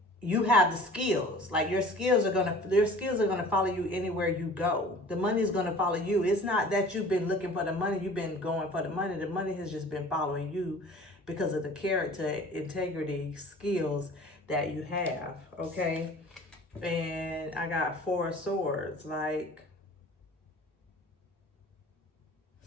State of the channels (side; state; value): both; normal; correlation 0.45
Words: you have the skills. Like your skills are gonna follow you anywhere you go. The money is gonna follow you. It's not that you've been looking for the money, you've been going for the money. The money has just been following you because of the character, integrity, skills that you have. Okay. And I got 4 of swords. Like,